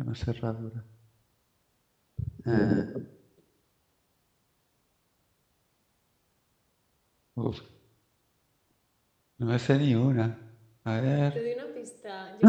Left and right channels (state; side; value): identical; both; correlation 1.00